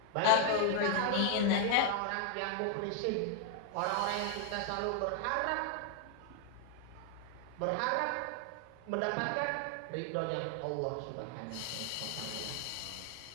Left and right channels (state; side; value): different; both; correlation 0.00